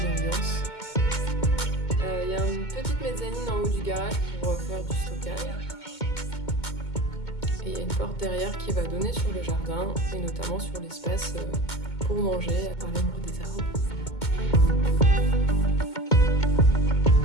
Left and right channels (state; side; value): late; right; 2.2 ms